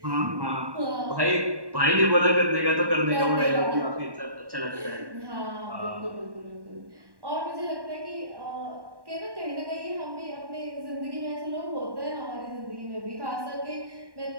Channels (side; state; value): left; late; 1.1 ms